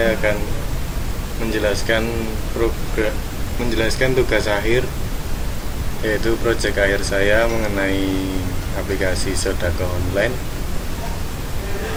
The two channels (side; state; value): both; identical; correlation 1.00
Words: akan menjelaskan tugas akhir, yaitu proyek akhir saya mengenai aplikasi Sodako online.